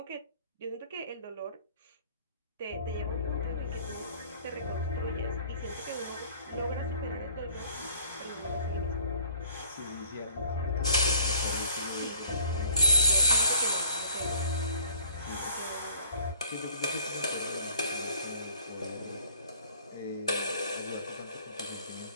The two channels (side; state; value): both; inverted; correlation -0.54